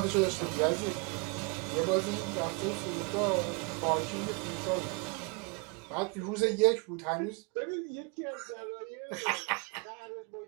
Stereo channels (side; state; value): left; quieter; 30.5 dB